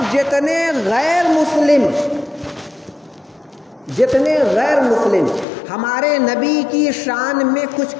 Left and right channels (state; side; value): drops out; right; at 5.5 s